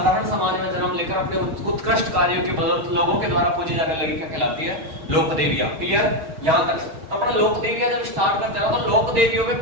समाज में जन्म लेकर अपने उत्कृष्ट कार्यों की बदौलत लोगों के द्वारा पूजी जाने लगी, क्या कहलाती है? लोक देवियां। क्लियर यहां तक? तो अपना लोक देवियां जब स्टार्ट करते हैं तो लोक देवियों में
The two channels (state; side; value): late; left; 6.4 ms